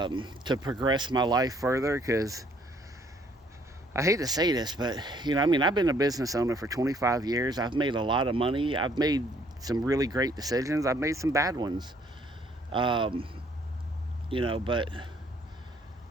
to progress my life further. Because I hate to say this, but I mean, I've been a business owner for 25 years. I've made a lot of money. I've made some really great decisions. I've made some bad ones. But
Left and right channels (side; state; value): both; normal; correlation 0.63